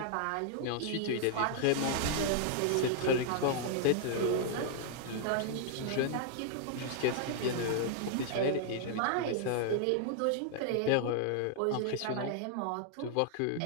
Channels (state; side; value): different; both; correlation -0.01